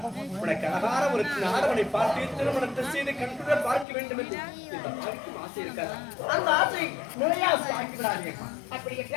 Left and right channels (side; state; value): right; drops out; at 3.9 s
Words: உனக்கு அழகான ஒரு நாடவனை பார்த்து திருமணத்தை செய்து கண்டுட பார்க்க வேண்டும் என்று இந்த வாழ்க்கையும் ஆசை இருக்காது. அந்த ஆசை நிறைய ஆக்கி விடாதீங்க. அப்படி